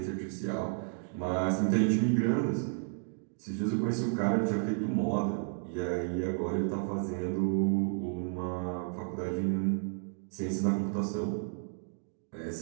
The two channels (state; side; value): silent; left; 56 dB below the other